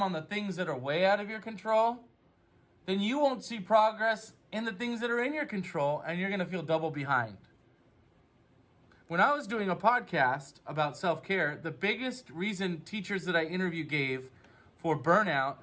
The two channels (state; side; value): identical; both; correlation 1.00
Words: on the things that are way out of your control, then you won't see progress in the things that are in your control, and you're going to feel double behind. When I was doing a podcast about self-care, the biggest reason teachers that I interview gave for burnout